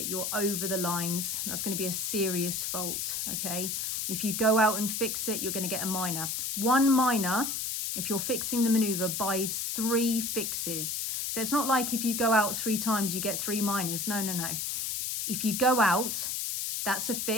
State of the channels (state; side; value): noise; left; hiss, 2 dB below the sound